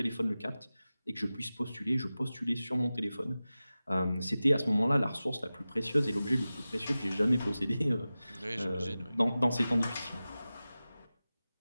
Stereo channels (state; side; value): inverted; both; correlation -0.96